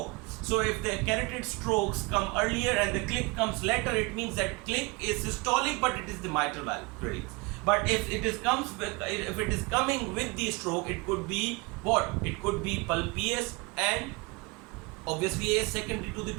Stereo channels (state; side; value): quieter; left; 26.4 dB